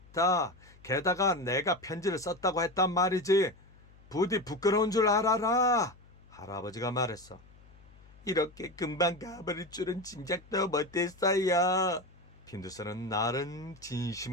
게다가 내가 편지를 썼다고 했단 말이지. 부디 부끄러운 줄 알아라. 할아버지가 말했어. 이렇게 금방 가버릴 줄은 짐작도 못했어요. 핀두스는 나른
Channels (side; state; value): left; noise; hum, 24 dB below the sound